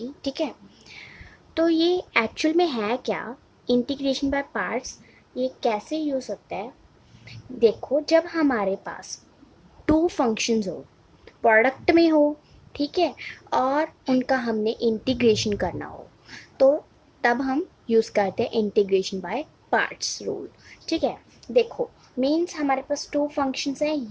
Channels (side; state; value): both; identical; correlation 1.00